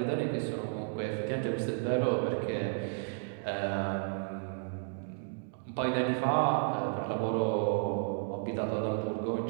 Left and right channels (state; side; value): silent; left; digital silence